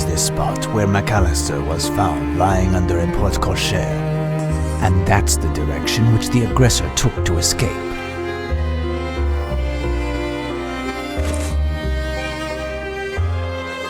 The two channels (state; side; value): identical; both; correlation 1.00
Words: this spot where McAllister was found lying under a porte-cochere. And that's the direction which the aggressor took to escape.